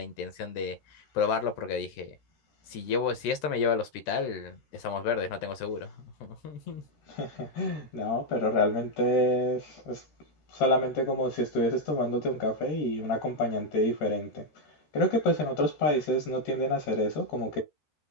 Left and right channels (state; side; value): late; right; 13 ms